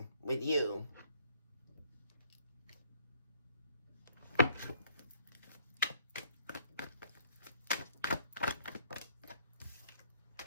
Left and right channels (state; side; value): inverted; both; correlation -0.62